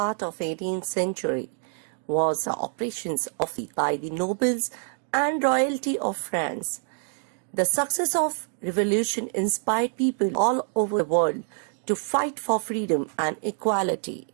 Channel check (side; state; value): left; silent; 55 dB below the other